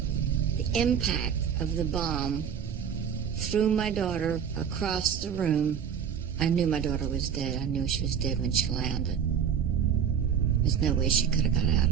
The impact of the bomb threw my daughter across the room. I knew my daughter was dead. I knew she was dead when she landed. There's no way she could have got out of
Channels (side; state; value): left; quieter; 7.8 dB